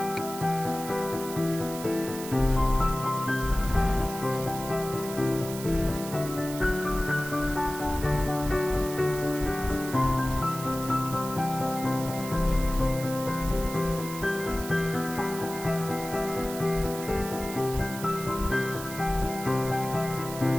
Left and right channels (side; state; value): right; noise; hiss, 11 dB below the sound